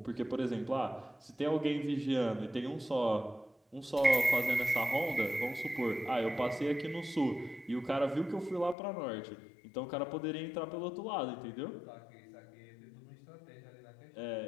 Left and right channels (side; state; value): right; drops out; at 8.8 s